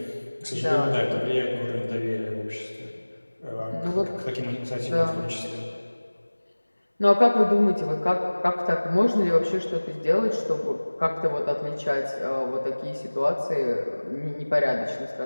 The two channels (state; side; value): inverted; both; correlation -1.00